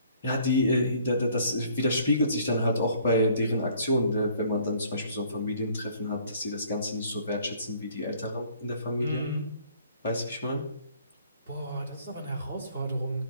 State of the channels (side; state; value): both; inverted; correlation -0.59